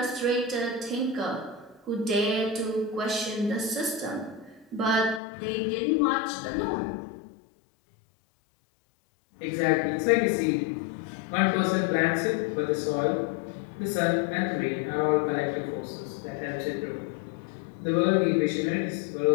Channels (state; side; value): drops out; right; at 5.2 s